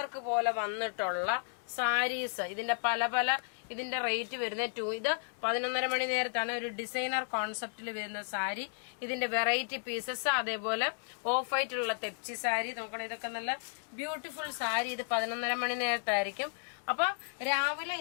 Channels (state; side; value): silent; right; digital silence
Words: പോലെ വന്നിട്ടുള്ള സാരീസ്. ഇതിന്റെ പല ഇതിന്റെ റേറ്റ് വരുന്നത് ഇത് 11:30 മണി നേരത്താണ് ഒരു ഡിസൈനർ കോൺസെപ്റ്റിൽ വരുന്ന സാരി. ഇതിന്റെ വെറൈറ്റി പീസസ്, അതേപോലെ ഓഫ് വൈറ്റുള്ള തെപ്ചി സാരി നോക്കണം. ഇതൊക്കെ നല്ല ബ്യൂട്ടിഫുൾ സാരി. ഇത് 11:30 മണി നേരത്തായിരിക്കും. അപ്പൊ